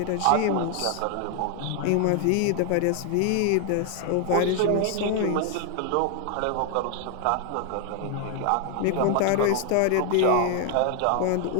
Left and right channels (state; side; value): different; both; correlation 0.00